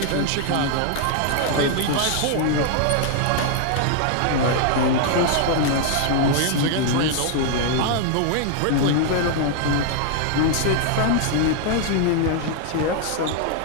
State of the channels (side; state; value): both; different; correlation 0.00